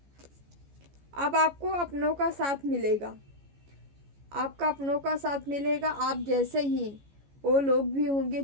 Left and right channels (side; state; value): left; late; 14 ms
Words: अब आपको अपनों का साथ मिलेगा, आपका अपनों का साथ मिलेगा। आप जैसे ही वो लोग भी होंगे